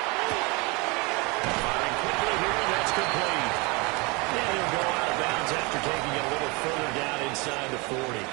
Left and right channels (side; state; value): left; quieter; 27.7 dB